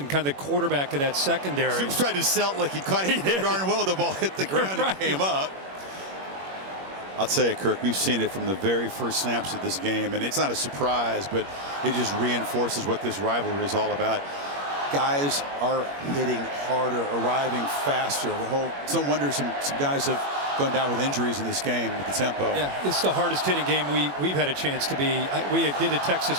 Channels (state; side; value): late; left; 21 ms